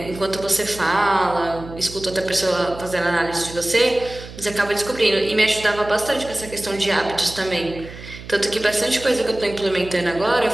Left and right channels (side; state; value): right; noise; hum, 15 dB below the sound